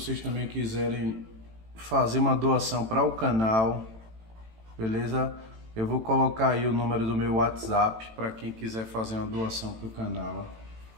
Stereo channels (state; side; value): late; left; 18 ms